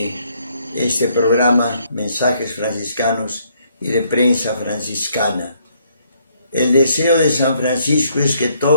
este programa, Mensajes Franciscanos y de Prensa Franciscana. El deseo de San Francisco es que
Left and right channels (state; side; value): inverted; both; correlation -0.69